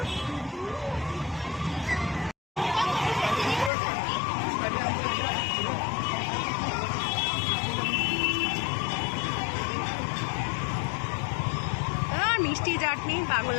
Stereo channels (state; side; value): drops out; right; at 3.7 s